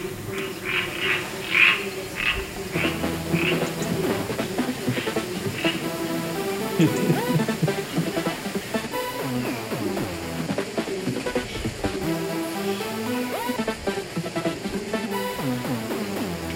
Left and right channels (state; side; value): identical; both; correlation 1.00